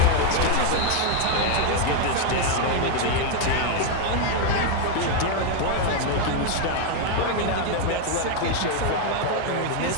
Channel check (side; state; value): both; different; correlation 0.01